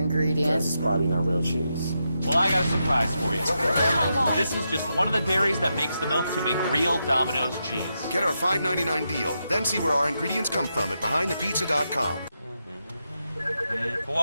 It's probably not real cheese. Well, I got a surprise for you. Oh my God. This is just one of the dairies that makes the milk to make real Domino's cheese. Get our $5.99 deal, then see where our ingredients come from at BehindThePizza.com.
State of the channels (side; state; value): both; inverted; correlation -0.85